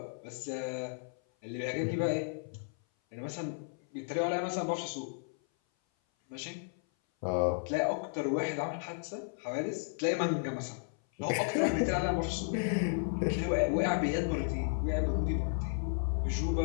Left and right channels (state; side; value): silent; right; 55 dB below the other